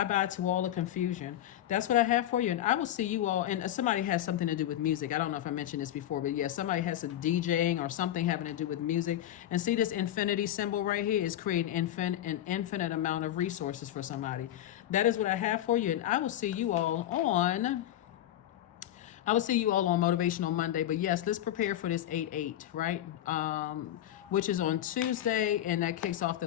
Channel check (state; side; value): quieter; right; 12.3 dB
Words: to all the confusion. That's what I have for you. And I will see you all. And somebody has something to do with music. I don't know if I mentioned this before, but yeah, somebody has some DJing or something having to do with music. And see this infinity symbol right here is creating an infinite amount of resources for somebody. That is what I have for you. And I will see you all on Motivational Monday. But yes, let's prepare for this 8-8, right? Which is on Tuesday, and that kicks off the